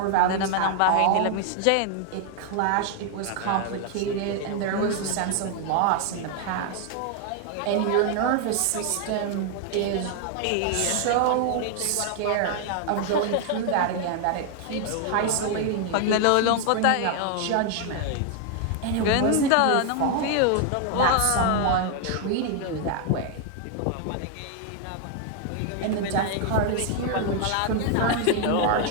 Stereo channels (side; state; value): both; different; correlation 0.00